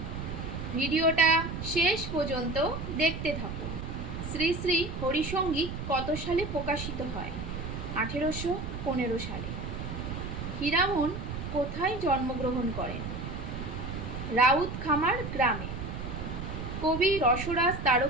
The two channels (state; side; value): noise; right; rumble, 6 dB below the sound